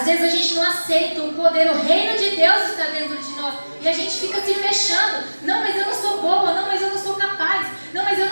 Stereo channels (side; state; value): both; inverted; correlation -1.00